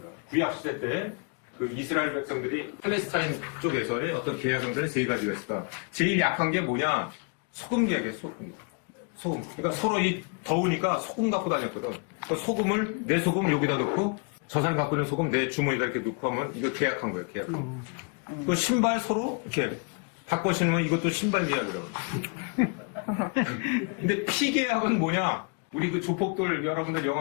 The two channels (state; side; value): quieter; right; 35.2 dB